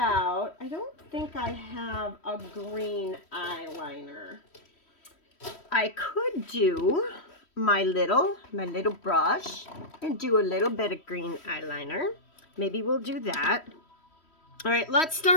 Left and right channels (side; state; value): right; late; 3.1 ms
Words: I don't think I have a green eyeliner. I could do my little brush and do a little bit of green eyeliner. Maybe we'll do that. All right, let's